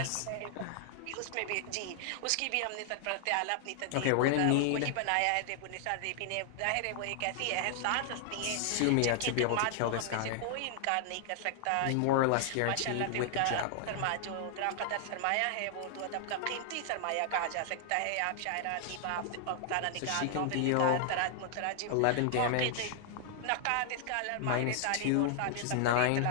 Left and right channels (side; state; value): both; different; correlation 0.00